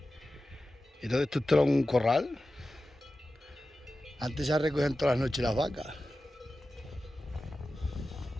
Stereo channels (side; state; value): both; normal; correlation 0.94